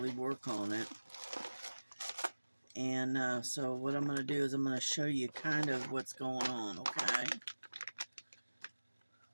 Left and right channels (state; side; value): inverted; both; correlation -1.00